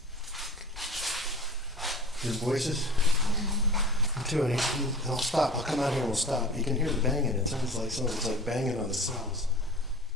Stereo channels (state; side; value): normal; both; correlation 0.38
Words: His voices? I'm doing it. I'll stop. I'll come out here and we'll stop. You can hear the banging. It sounds like someone's like banging on the cells.